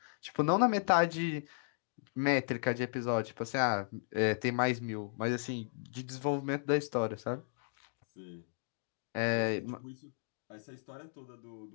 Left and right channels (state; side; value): silent; right; digital silence